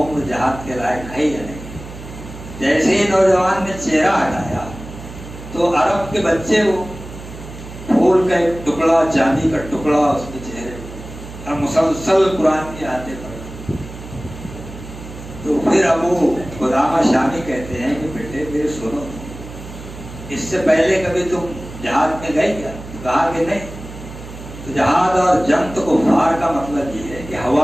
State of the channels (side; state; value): right; noise; hum, 13 dB below the sound